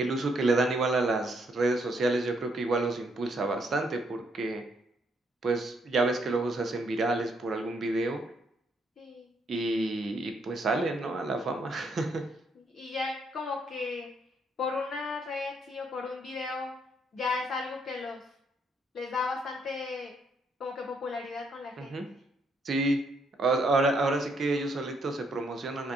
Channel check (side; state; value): both; normal; correlation 0.73